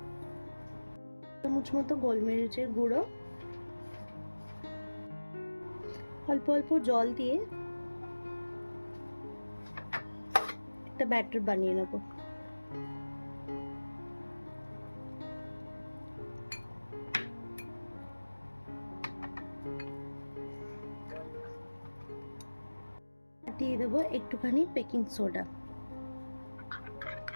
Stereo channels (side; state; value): both; inverted; correlation -1.00